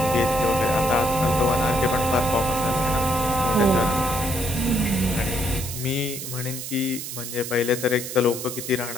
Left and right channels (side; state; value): right; noise; hiss, 8 dB below the sound